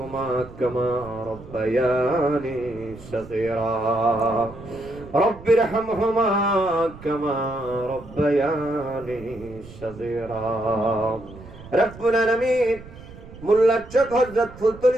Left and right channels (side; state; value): right; noise; rumble, 17 dB below the sound